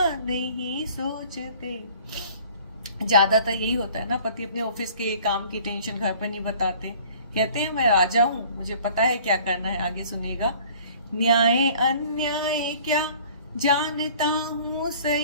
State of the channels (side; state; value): both; inverted; correlation -0.51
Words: नहीं सोचते। ज्यादातर यही होता है ना, पति अपने ऑफिस के काम की टेंशन घर पर नहीं बताते, कहते हैं मैं राजा हूँ, मुझे पता है क्या करना है। आगे सुनिएगा। न्याय अन्याय क्या जानता हूँ